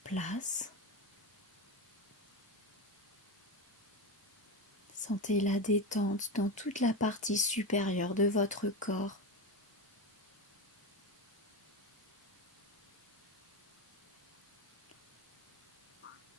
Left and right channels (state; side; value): normal; both; correlation 0.18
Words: Sentez la détente dans toute la partie supérieure de votre corps.